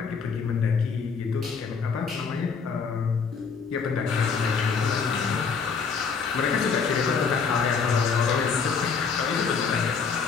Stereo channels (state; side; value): quieter; right; 5.6 dB